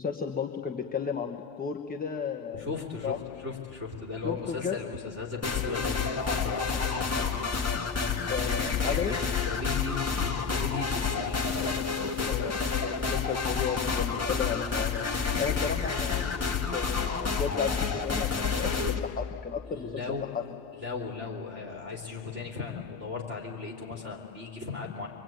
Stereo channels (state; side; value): quieter; right; 5.3 dB